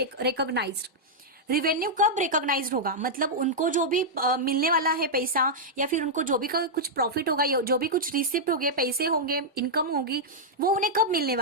recognised. Revenue कब रिकॉग्नाइज्ड होगा, मतलब उनको जो भी मिलने वाला है पैसा, या फिर उनको जो भी कुछ प्रॉफिट होगा, या जो भी कुछ रिसिप्ट होंगे, पैसे होंगे, इनकम होगी, वो उन्हें कब मिलने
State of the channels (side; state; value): both; normal; correlation -0.06